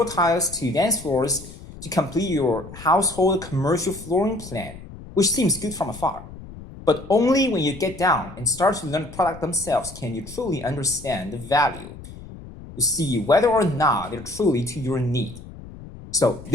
tiles to dance floors to complete your household commercial flooring plan, which seems good from afar. But only when you get down and start to learn the product themselves can you truly understand the value to see whether or not they're truly to your need. So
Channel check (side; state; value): left; noise; rumble, 15 dB below the sound